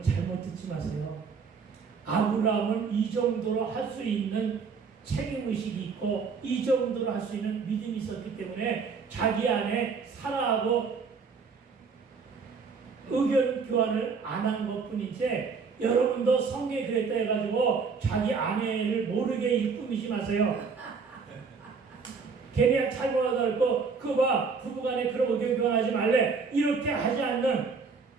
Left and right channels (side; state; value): left; quieter; 5.2 dB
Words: 잘못 듣지 마세요. 아브라함은 이 정도로 할 수 있는 책임의식이 있고 이 정도로 할 수 있는 믿음이 있었기 때문에 자기 안에 사라하고 의견 교환을 안 한 것뿐이지 여러분도 성경에 그랬다 해가지고 자기 아내를 모르게 일꾸미지 마세요. 걔네 잘 몰아들고 그봐 부부간에 그런 의견 교환하지 말래 이렇게 하지 않는